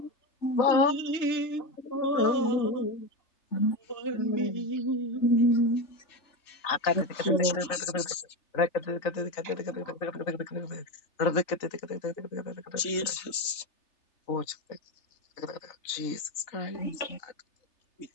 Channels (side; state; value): right; late; 3.3 ms